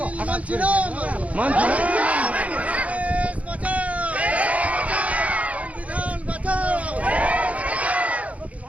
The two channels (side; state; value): left; late; 0.067 ms